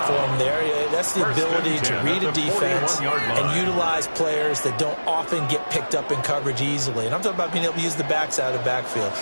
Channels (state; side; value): inverted; both; correlation -1.00